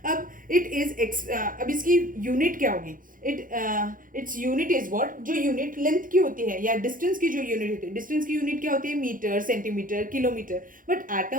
अब इट इज अब इसकी यूनिट क्या होगी? Its unit is what? जो यूनिट लेंथ की होती है या डिस्टेंस की जो यूनिट होती है, डिस्टेंस की यूनिट क्या होती है? Metre, centimetre, kilometre. But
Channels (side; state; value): left; late; 0.40 ms